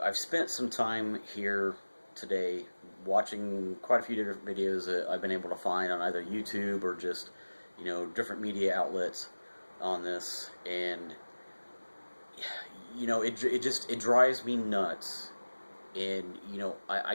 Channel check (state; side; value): inverted; both; correlation -1.00